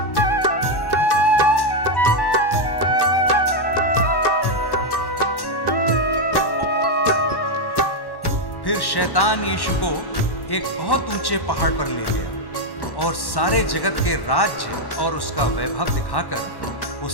फिर शैतान यीशु को एक बहुत ऊंचे पहाड़ पर ले गया और सारे जगत के राज्य और उसका वैभव दिखाकर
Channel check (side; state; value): right; late; 1.1 ms